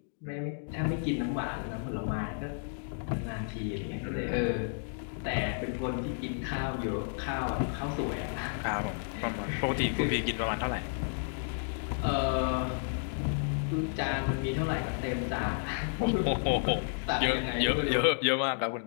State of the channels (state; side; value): silent; right; digital silence